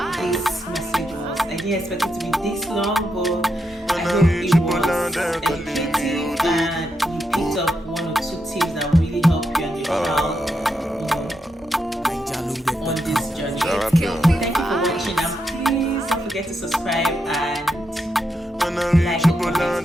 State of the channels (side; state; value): both; normal; correlation 0.83